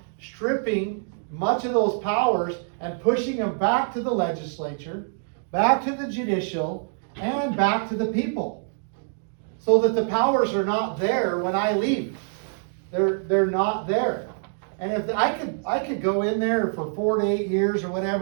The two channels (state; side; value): silent; left; digital silence